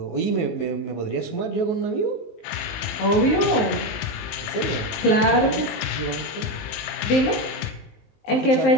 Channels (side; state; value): right; late; 19 ms